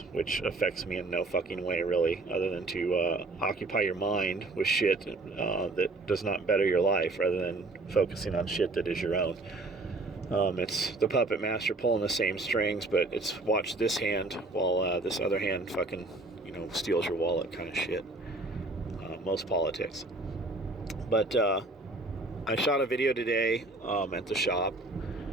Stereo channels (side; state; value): left; quieter; 3.0 dB